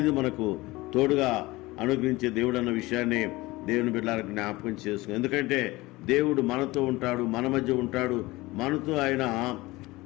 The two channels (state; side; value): quieter; right; 20.5 dB